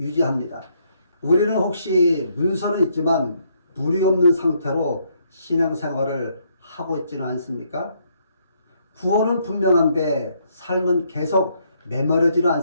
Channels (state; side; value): inverted; both; correlation -0.71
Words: 우리는 혹시 문서는 있지만 물이 없는 상태로 신앙생활을 하고 있지는 않습니까? 구원은 분명한데 삶은 계속 메마르지는